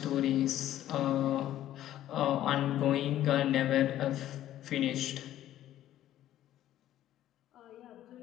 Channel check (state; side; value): quieter; right; 12.8 dB